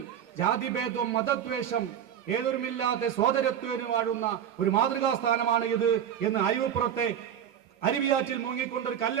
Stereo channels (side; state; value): left; quieter; 9.4 dB